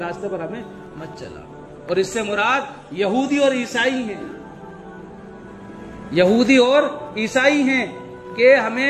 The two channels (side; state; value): both; identical; correlation 1.00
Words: پر ہمیں مت چلا۔ اور اس سے مراد یہودی اور عیسائی ہیں، یہودی اور عیسائی ہیں کہ